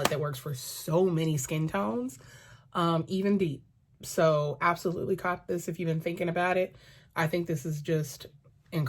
that works for so many skin tones, even deep. So absolutely cop this if you've been thinking about it. I think this is just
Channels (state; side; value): identical; both; correlation 1.00